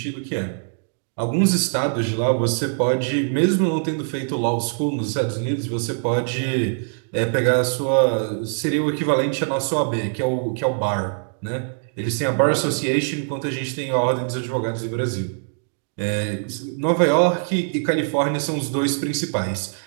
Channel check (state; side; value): silent; left; digital silence